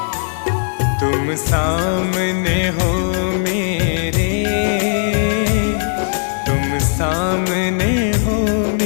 तुम सामने हो मेरे, तुम सामने हो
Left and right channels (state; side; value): silent; right; digital silence